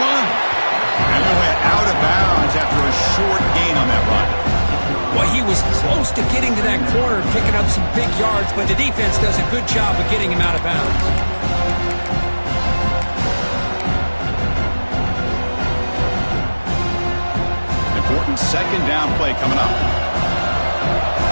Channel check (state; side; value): inverted; both; correlation -1.00